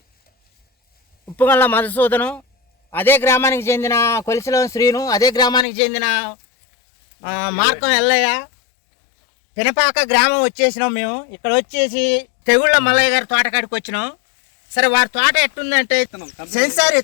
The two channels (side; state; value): right; drops out; at 5.7 s